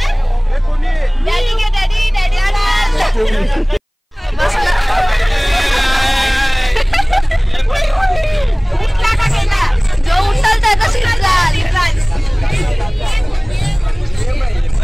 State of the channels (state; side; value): identical; both; correlation 1.00